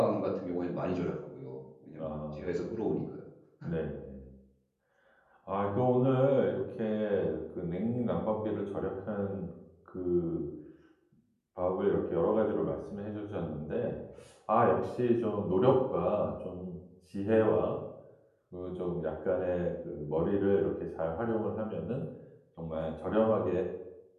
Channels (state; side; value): identical; both; correlation 1.00